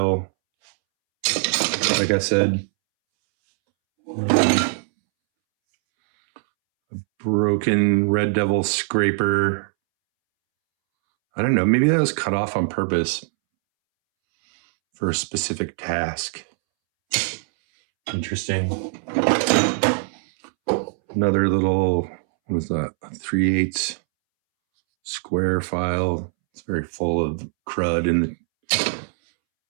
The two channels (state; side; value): silent; left; 64 dB below the other